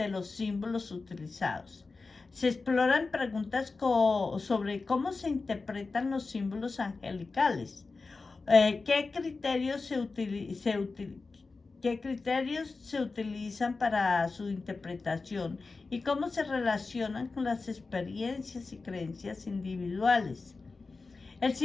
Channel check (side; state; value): right; quieter; 4.0 dB